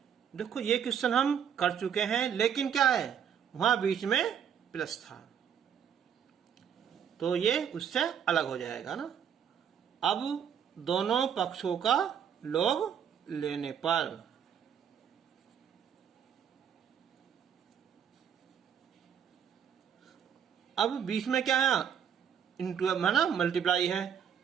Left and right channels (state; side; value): quieter; left; 8.3 dB